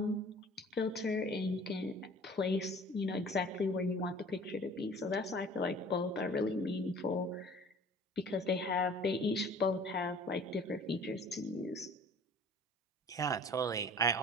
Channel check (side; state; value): both; normal; correlation 0.48